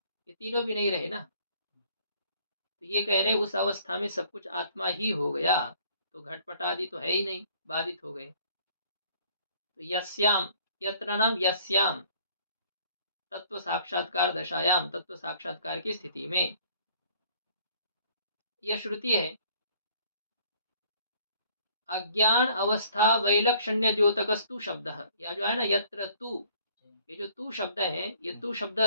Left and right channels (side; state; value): both; inverted; correlation -0.57